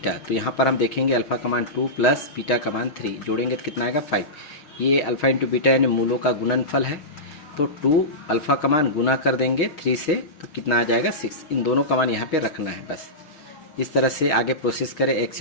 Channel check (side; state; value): right; late; 6.4 ms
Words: तो यहाँ पर हम देखेंगे अल्फा का मान 2 प्लस बीटा का मान 3, जोड़ेंगे तो कितना आएगा 5। ये अल्फा इंटू बीटा यानी मूलों का गुणनफल है। तो 2 अल्फा का मान गुना कर देंगे 3 से, तो कितना आ जाएगा 6। इन दोनों का मान यहाँ पे रखना है बस। इस तरह से आगे प्रोसेस करें,